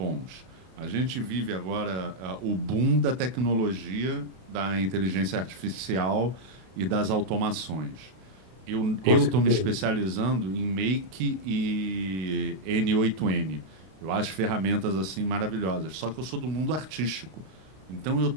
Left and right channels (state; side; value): late; left; 32 ms